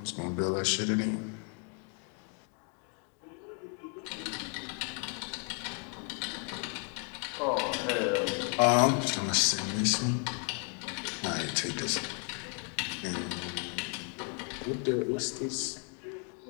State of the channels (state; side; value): quieter; right; 39.3 dB